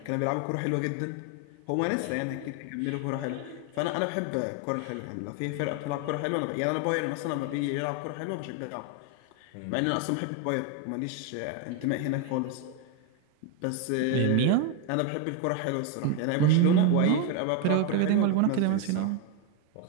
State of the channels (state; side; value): different; both; correlation 0.02